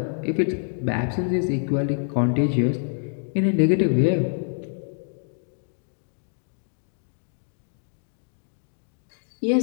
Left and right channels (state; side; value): silent; right; digital silence